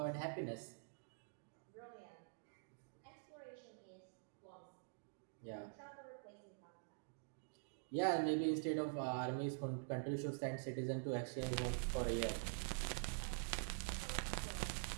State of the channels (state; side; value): silent; left; digital silence